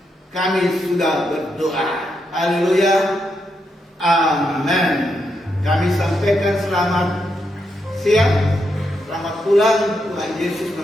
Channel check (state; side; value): normal; both; correlation 0.82